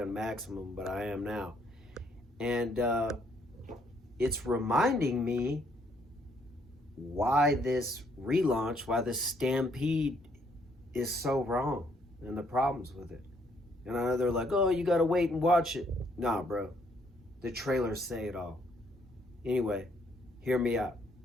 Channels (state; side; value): normal; both; correlation 0.68